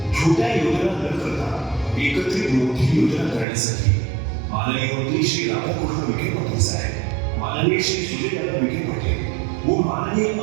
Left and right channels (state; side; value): drops out; left; at 3.5 s